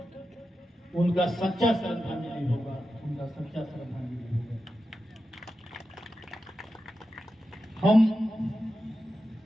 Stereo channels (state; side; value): normal; both; correlation 0.90